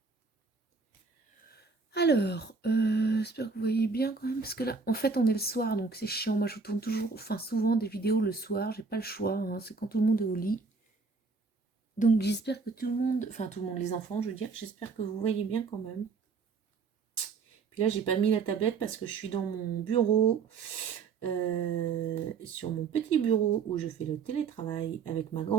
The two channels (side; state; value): left; quieter; 4.7 dB